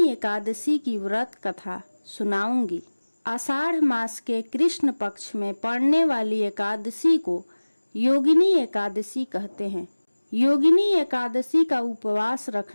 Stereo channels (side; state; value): both; inverted; correlation -1.00